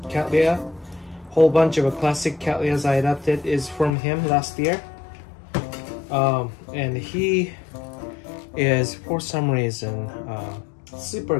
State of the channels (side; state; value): right; drops out; at 3.9 s